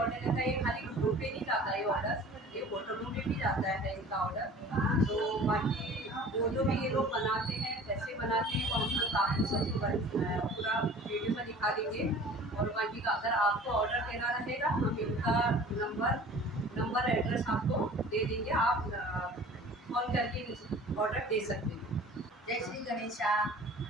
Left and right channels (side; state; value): both; normal; correlation 0.45